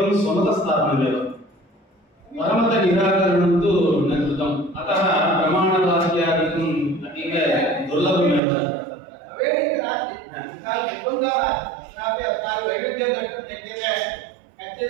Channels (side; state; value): left; drops out; at 8.4 s